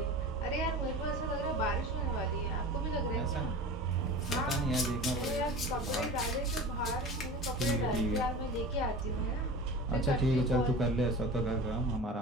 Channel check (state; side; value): normal; both; correlation 0.34